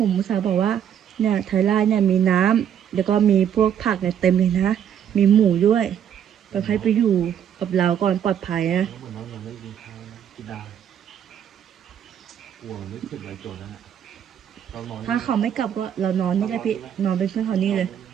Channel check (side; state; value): left; quieter; 9.2 dB